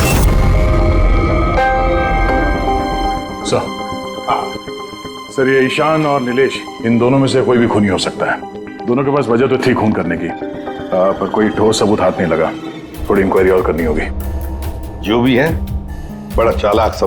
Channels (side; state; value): both; identical; correlation 1.00